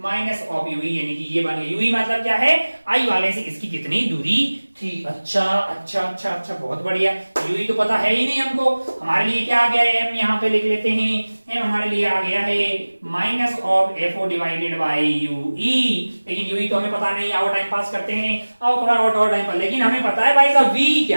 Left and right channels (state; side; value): inverted; both; correlation -1.00